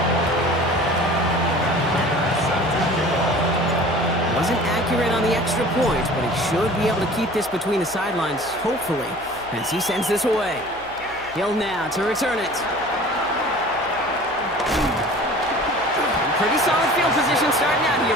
Wasn't accurate on the extra point, but he should be able to keep this between the sidelines, hopefully, as he sends this away. Hill now to return it. Pretty solid field position starting out here,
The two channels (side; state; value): left; noise; hum, 23 dB below the sound